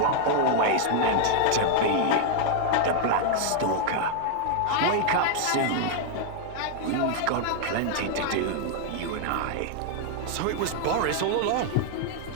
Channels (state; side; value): different; both; correlation 0.00